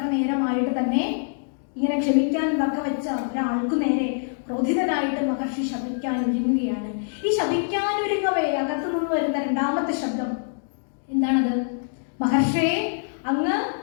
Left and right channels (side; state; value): right; silent; digital silence